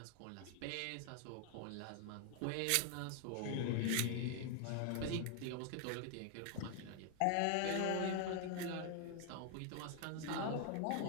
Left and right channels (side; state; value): both; different; correlation 0.00